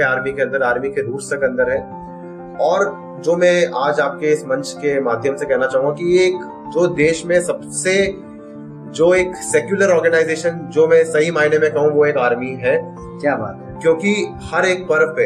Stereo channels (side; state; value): both; identical; correlation 1.00